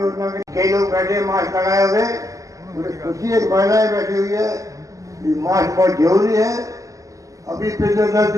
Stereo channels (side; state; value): left; late; 0.16 ms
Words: के? कई लोग बैठे मास्क लगाए हुए, मुझे खुशी एक महिलाएं बैठी हुई है, मास्क बहुत जरूरी है। अभी पिछले 10